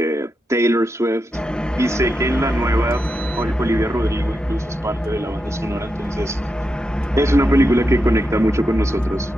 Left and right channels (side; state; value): both; normal; correlation 0.86